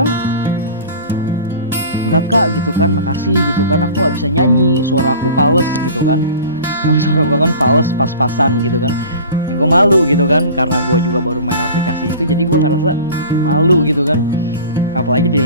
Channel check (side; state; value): both; inverted; correlation -0.40